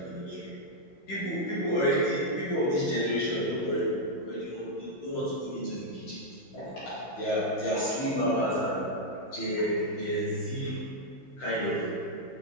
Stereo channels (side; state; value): right; late; 15 ms